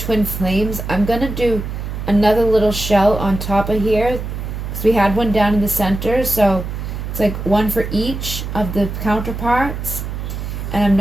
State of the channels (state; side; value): noise; right; hum, 6 dB below the sound